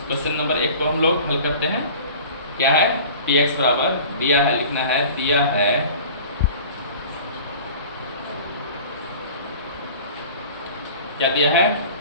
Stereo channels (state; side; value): inverted; both; correlation -0.42